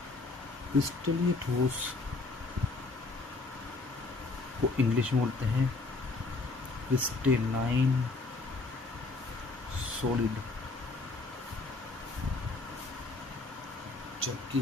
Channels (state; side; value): quieter; right; 3.5 dB